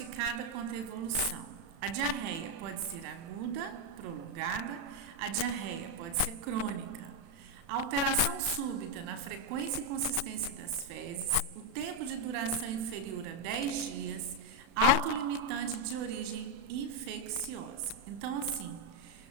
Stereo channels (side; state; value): left; late; 36 ms